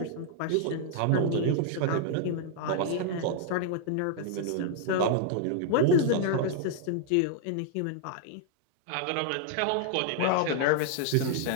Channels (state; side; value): different; both; correlation -0.01